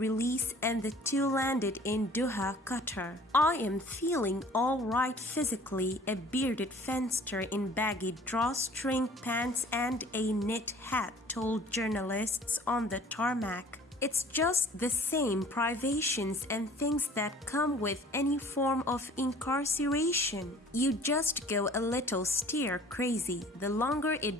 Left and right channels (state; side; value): normal; both; correlation 0.49